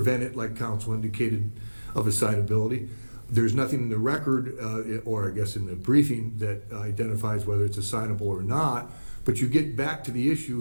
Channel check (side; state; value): both; inverted; correlation -1.00